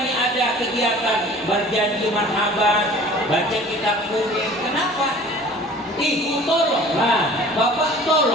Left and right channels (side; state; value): both; normal; correlation 0.46